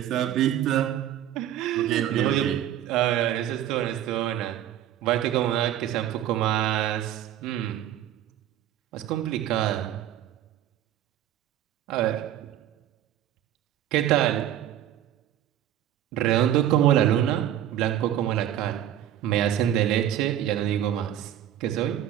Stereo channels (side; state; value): left; quieter; 11.6 dB